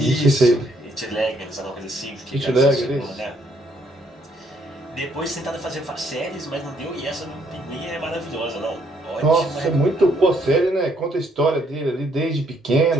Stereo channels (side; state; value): both; normal; correlation 0.69